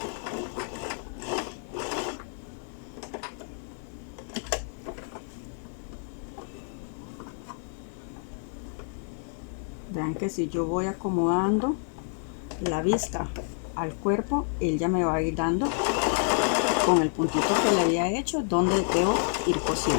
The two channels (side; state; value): right; silent; 59 dB below the other